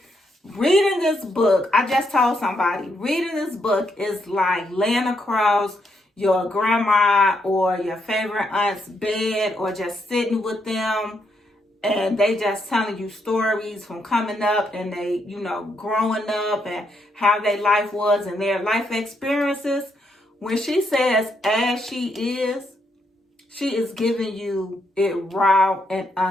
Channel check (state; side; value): normal; both; correlation 0.77